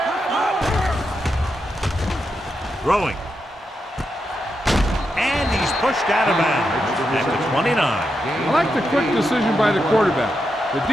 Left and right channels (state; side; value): normal; both; correlation 0.85